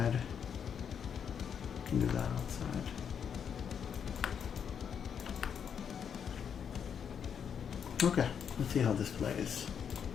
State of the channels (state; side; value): quieter; right; 7.6 dB